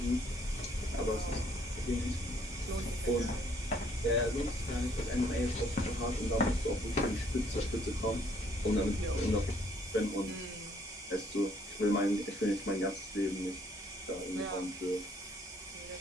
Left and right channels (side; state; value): both; normal; correlation 0.65